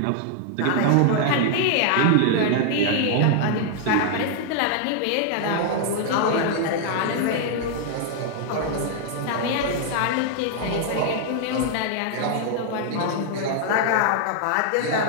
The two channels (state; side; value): different; both; correlation 0.00